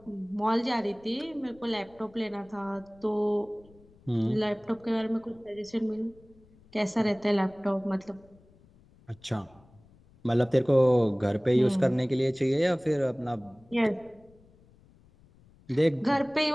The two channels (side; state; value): left; noise; rumble, 28 dB below the sound